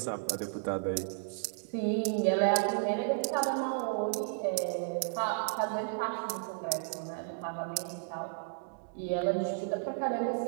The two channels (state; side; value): silent; left; digital silence